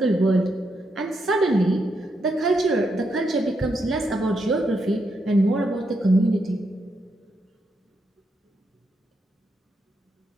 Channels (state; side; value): normal; both; correlation 0.81